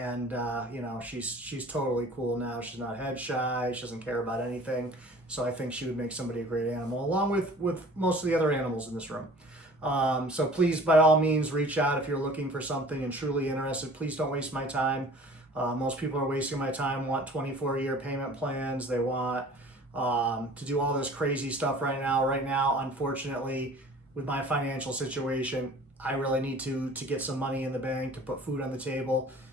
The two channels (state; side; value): normal; both; correlation 0.47